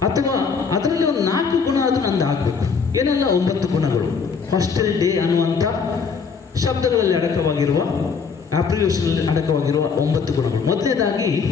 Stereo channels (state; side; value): quieter; right; 5.6 dB